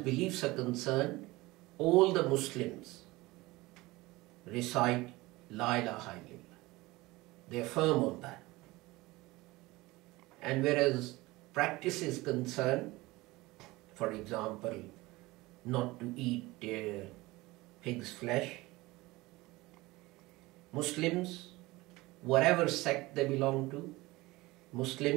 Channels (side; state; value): left; quieter; 20.7 dB